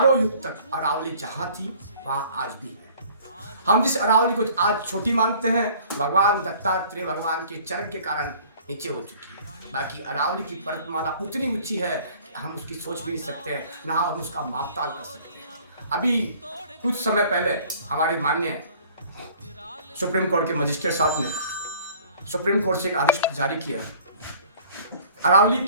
युग तक अरावली जहाँ थी वहाँ आज भी है। हम जिस अरावली को आज छोटी मानते हैं, भगवान दत्तात्रेय भगवान के चरण के कारण नीचे हो चुकी है। बाकी अरावली की पर्वतमाला उतनी ऊंची है कि हम उसकी सोच भी नहीं सकते हैं, ना हम उसका मापताल कर सकते हैं। अभी कुछ समय पहले हमारे माननीय सुप्रीम कोर्ट के मजिस्ट्रेट साहब ने सुप्रीम कोर्ट से एक आदेश जारी किया, अरावली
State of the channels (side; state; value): both; inverted; correlation -0.51